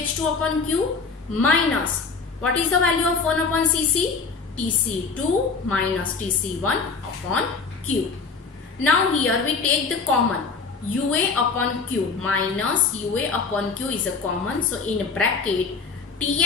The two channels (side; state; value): right; quieter; 4.7 dB